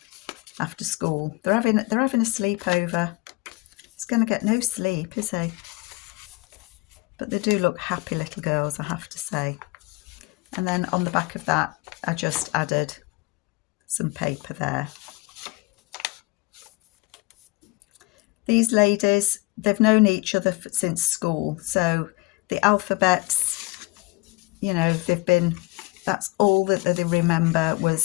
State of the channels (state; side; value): quieter; right; 23.0 dB